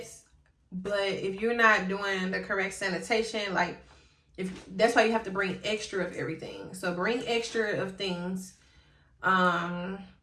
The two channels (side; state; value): both; identical; correlation 1.00